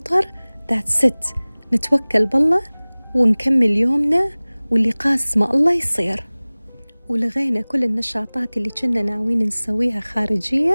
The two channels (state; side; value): inverted; both; correlation -1.00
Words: that's it، نتوكل بالله ونكمل يومنا واللي قاسمه الله يصير. ولغينا كل النشاطات اللي كنا ناويين نسويها